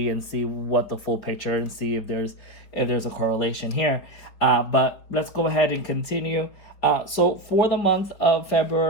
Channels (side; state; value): right; late; 4.7 ms